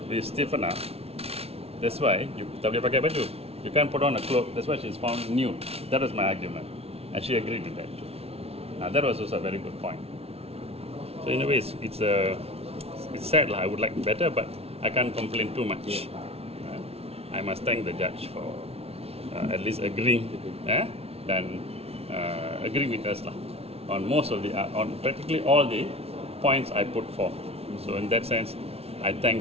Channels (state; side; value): late; left; 0.30 ms